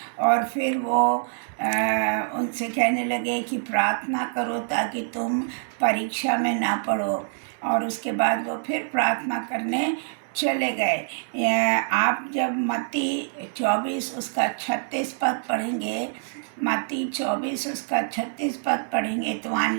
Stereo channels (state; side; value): silent; left; digital silence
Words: और फिर वो उनसे कहने लगे कि प्रार्थना करो ताकि तुम परीक्षा में ना पड़ो। और उसके बाद वो फिर प्रार्थना करने चले गए। आप जब मत्ती 24 उसका 36 पद पढ़ेंगे, मत्ती 24 उसका 36 पद पढ़ेंगे तो वहाँ